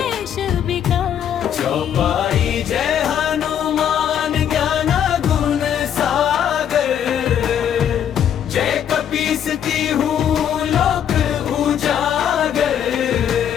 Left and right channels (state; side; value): quieter; right; 9.3 dB